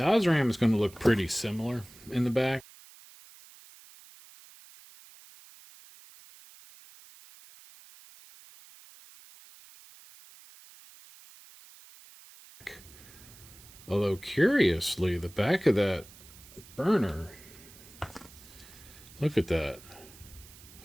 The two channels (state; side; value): noise; right; hiss, 21 dB below the sound